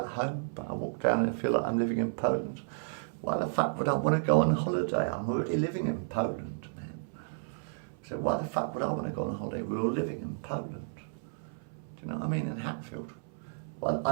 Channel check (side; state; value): left; silent; 56 dB below the other